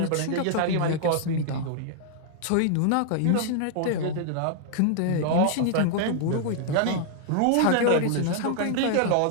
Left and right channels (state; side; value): different; both; correlation -0.01